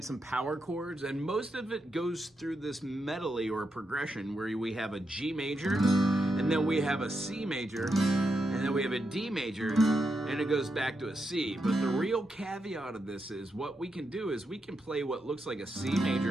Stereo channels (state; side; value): normal; both; correlation 0.84